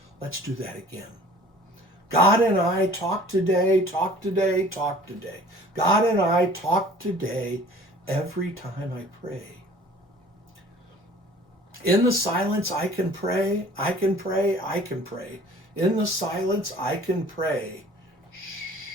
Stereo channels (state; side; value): normal; both; correlation 0.49